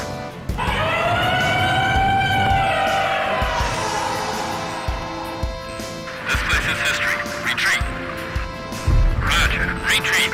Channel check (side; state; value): both; identical; correlation 1.00